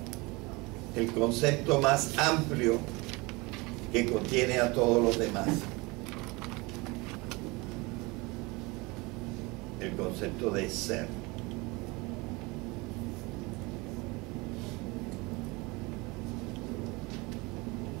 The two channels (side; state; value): left; quieter; 25.0 dB